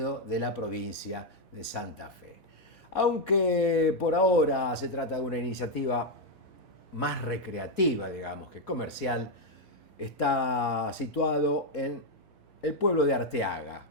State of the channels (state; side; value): normal; both; correlation 0.02